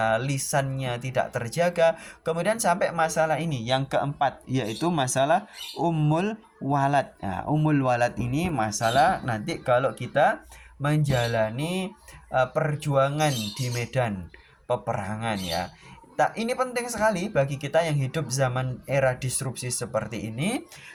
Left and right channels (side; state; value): both; identical; correlation 1.00